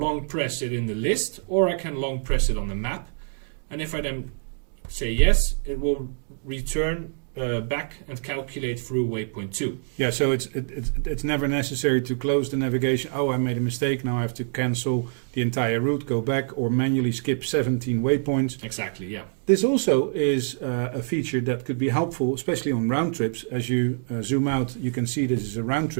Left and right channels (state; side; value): silent; left; digital silence